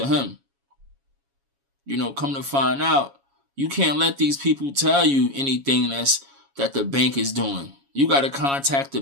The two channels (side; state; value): left; late; 7.2 ms